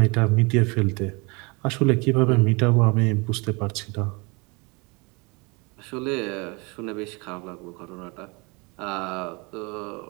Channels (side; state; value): left; quieter; 28.4 dB